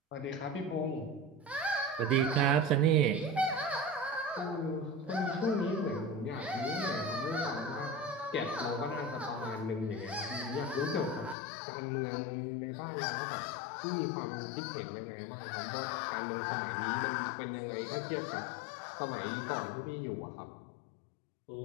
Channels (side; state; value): right; drops out; at 11.4 s